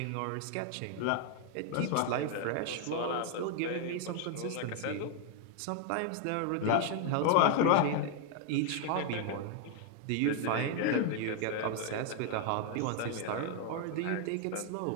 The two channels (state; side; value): different; both; correlation 0.00